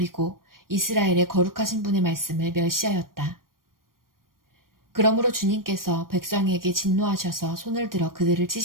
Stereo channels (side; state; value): left; late; 0.91 ms